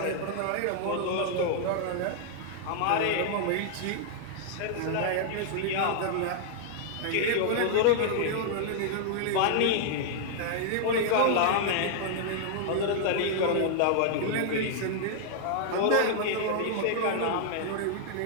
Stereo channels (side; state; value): both; different; correlation -0.01